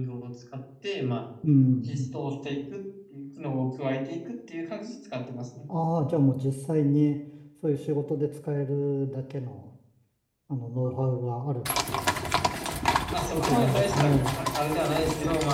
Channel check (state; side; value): identical; both; correlation 1.00